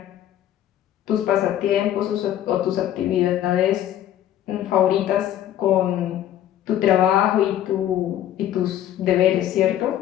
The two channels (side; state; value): right; quieter; 11.8 dB